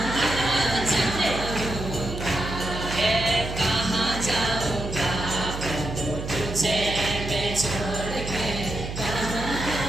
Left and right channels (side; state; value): right; noise; hum, 7 dB below the sound